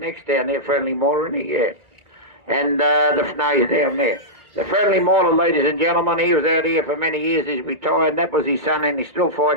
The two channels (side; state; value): left; late; 2.2 ms